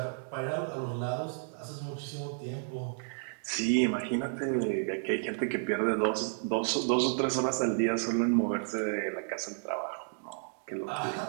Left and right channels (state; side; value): silent; left; digital silence